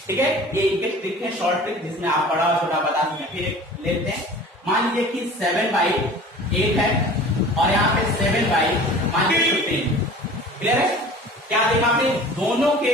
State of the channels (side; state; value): both; normal; correlation 0.43